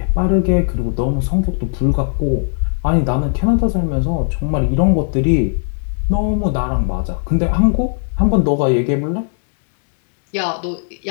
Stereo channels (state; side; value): silent; right; digital silence